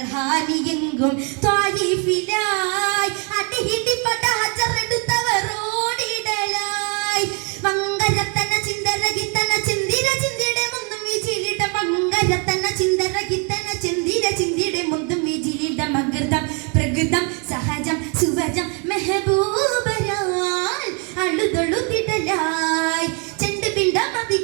ഹാനിയെങ്കും ത്വായിഫിലായി അടിയിടി പട ഹജറെടുത്തവരോടിടലായി വങ്കരത്തന ചിന്തരകിത്തന ചിന്തിര ചിന്തിടെ മുന്നും വിജിലിട വങ്കരത്തന ചിന്തരകിത്തന ചിന്തിര ചിന്തിടെ മുന്നും വിജിലിട മകൃതം പ്രകൃതം സഹജം സുവജം മെഹബൂബരാൽ അളുതൊളുതിടലായി ചെണ്ട് പിണ്ട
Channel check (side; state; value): left; quieter; 35.6 dB